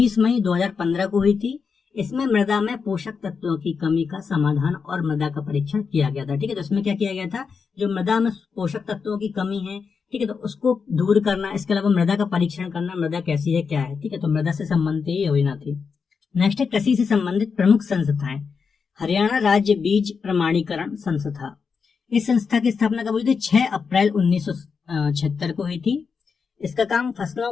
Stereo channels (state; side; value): quieter; right; 5.6 dB